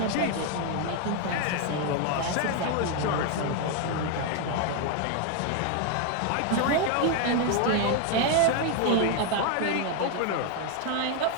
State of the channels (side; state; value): both; different; correlation 0.01